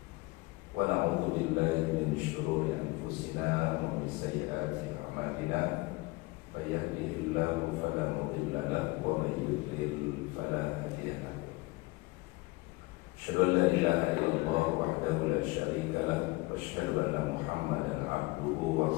ونعوذ بالله من شرور أنفسنا ومن سيئات أعمالنا من يهده الله فلا مضل له ومن يضلل فلا هادي له أشهد أن لا إله إلا الله وحده لا شريك له وأشهد أن محمدا عبده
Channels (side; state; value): right; quieter; 23.3 dB